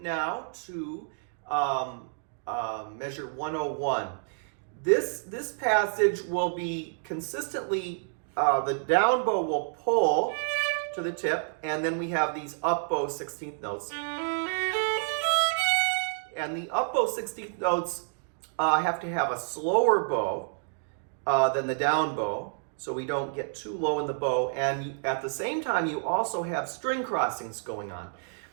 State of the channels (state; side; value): silent; left; digital silence